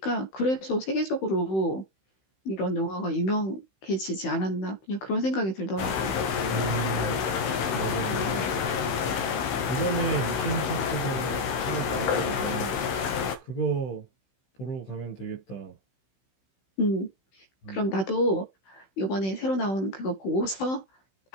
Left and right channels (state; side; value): late; right; 16 ms